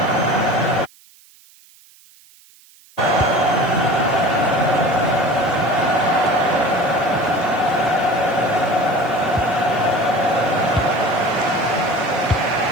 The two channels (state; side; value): noise; right; hiss, 27 dB below the sound